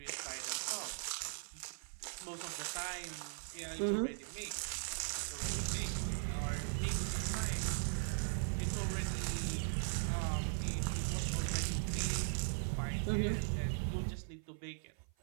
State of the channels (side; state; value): left; silent; 51 dB below the other